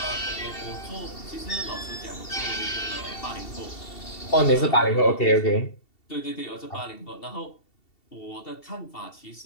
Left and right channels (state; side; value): late; right; 2.7 ms